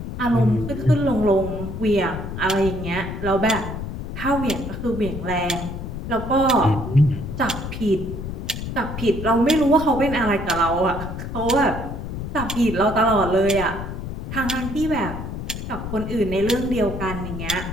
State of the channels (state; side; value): noise; left; rumble, 7 dB below the sound